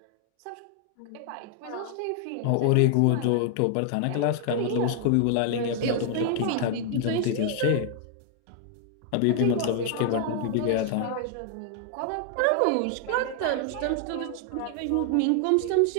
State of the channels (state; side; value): different; both; correlation 0.00